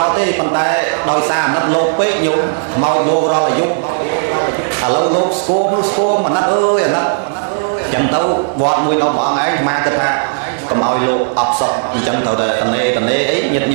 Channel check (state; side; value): silent; left; digital silence